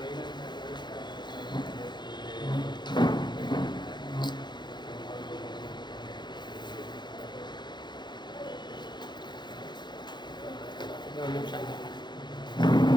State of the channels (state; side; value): late; right; 0.21 ms